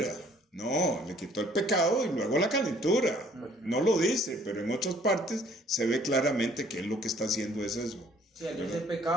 No, le quitó el pecado y luego la calentura. No lo dice, pero en otras partes se ve claramente que él lo que está haciendo es eso. Sí, al dice el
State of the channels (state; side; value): normal; both; correlation 0.59